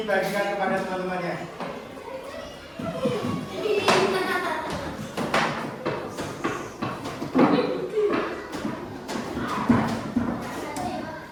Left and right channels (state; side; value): identical; both; correlation 1.00